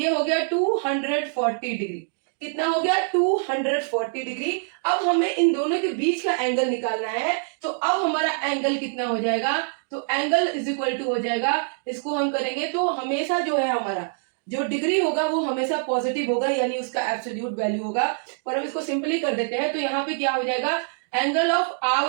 हो गया 240 डिग्री। कितना हो गया? 240 डिग्री। अब हमें इन दोनों के बीच का एंगल निकालना है। तो अब हमारा एंगल कितना हो जाएगा? तो एंगल इज इक्वल टू हो जाएगा, इसको हम करेंगे तो हमेशा जो है हमारा जो डिग्री होगा वो हमेशा पॉजिटिव होगा, यानी उसका एब्सोल्यूट वैल्यू होगा। पर हम इसको सिंपली कर देते हैं। तो यहाँ पे क्या हो जाएगा? Angle of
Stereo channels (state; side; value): silent; left; digital silence